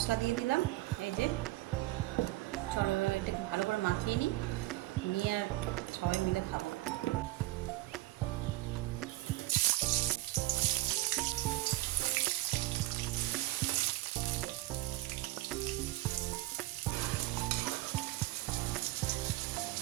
দিয়ে দিলাম, এই যে চলো এটাকে ভালো করে মাখিয়ে নিয়ে আর সবাই মিলে খাবো।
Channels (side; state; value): left; quieter; 18.1 dB